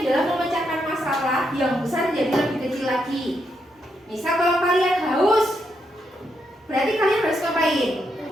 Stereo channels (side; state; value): both; normal; correlation 0.80